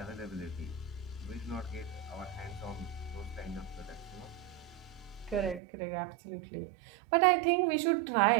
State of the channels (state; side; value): drops out; left; at 5.6 s